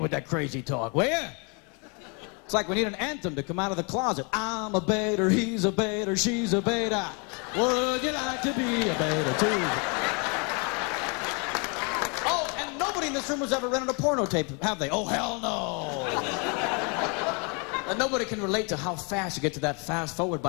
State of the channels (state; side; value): quieter; right; 34.0 dB